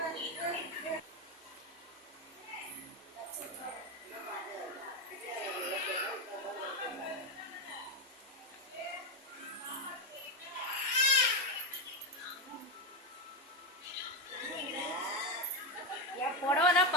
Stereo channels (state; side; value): normal; both; correlation 0.08